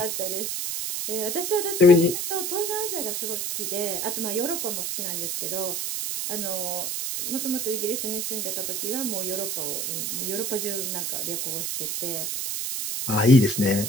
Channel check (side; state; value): right; noise; hiss, 2 dB below the sound